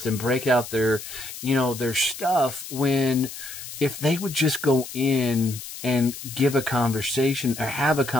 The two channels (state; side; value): noise; left; hiss, 11 dB below the sound